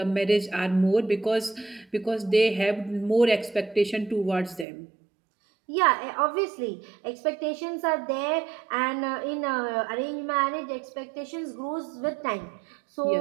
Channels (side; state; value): left; drops out; at 4.7 s